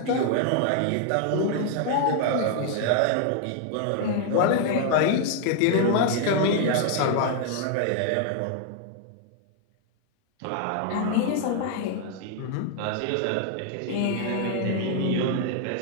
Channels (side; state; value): both; different; correlation 0.00